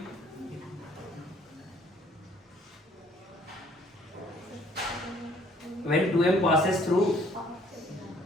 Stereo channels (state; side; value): normal; both; correlation 0.60